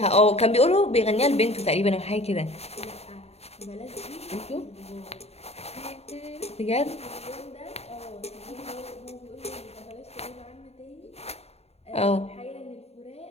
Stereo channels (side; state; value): right; late; 0.30 ms